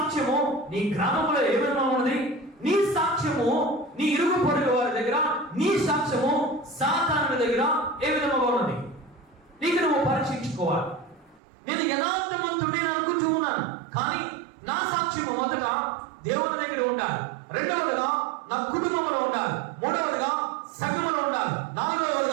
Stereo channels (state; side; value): drops out; left; at 11.4 s